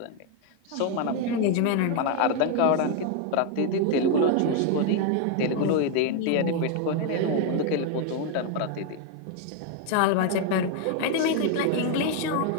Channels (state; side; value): different; both; correlation 0.01